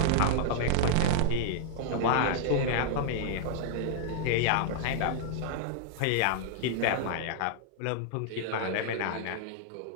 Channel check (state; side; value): different; both; correlation 0.00